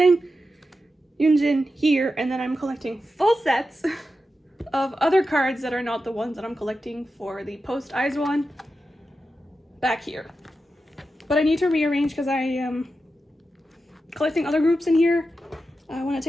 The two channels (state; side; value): normal; both; correlation 0.90